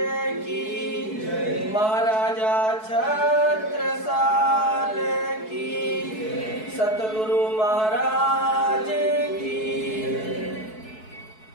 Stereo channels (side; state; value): right; late; 4.6 ms